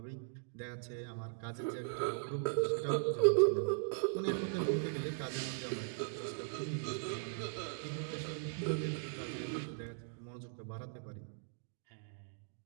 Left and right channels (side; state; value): left; silent; digital silence